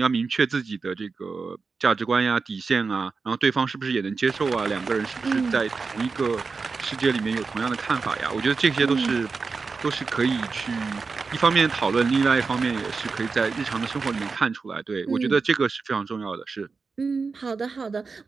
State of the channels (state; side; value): quieter; left; 4.6 dB